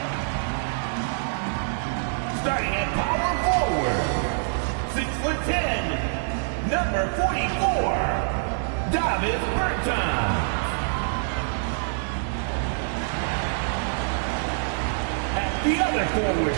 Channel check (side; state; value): left; silent; digital silence